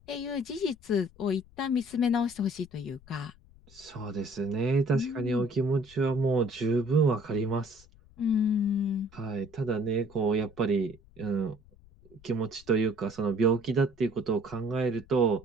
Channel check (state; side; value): noise; left; rumble, 25 dB below the sound